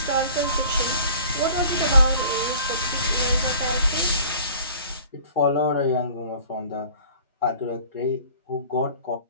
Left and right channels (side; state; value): both; inverted; correlation -0.48